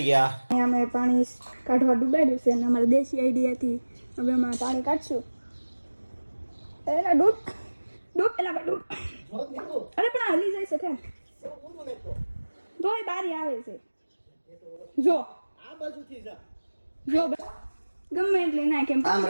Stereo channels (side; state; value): both; inverted; correlation -1.00